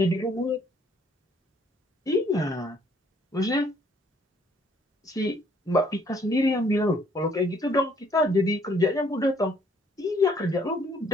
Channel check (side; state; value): both; normal; correlation 0.62